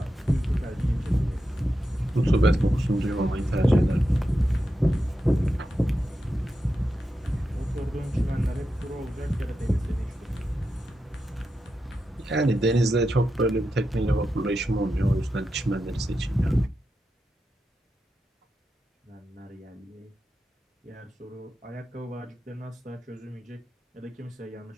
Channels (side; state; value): both; normal; correlation 0.89